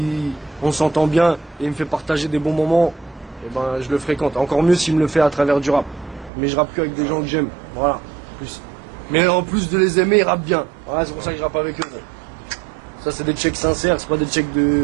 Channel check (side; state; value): left; drops out; at 6.3 s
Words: on s'entend bien et il me fait partager des bons moments, eh ben je le fréquente. Encore mieux s'il me le fait à travers du rap. Mais je rappe que avec des gens que j'aime. Voilà. Plus. Mais en plus de les aimer, ils rappent bien. Voilà, c'est pour ça que je rappe avec eux. Ça, c'est des checks sincères, c'est pas des checks